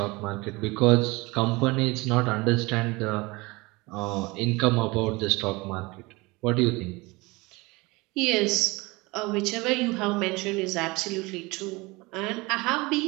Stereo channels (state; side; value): quieter; left; 23.9 dB